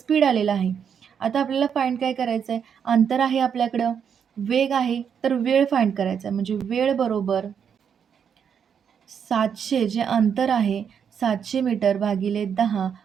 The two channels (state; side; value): quieter; left; 7.6 dB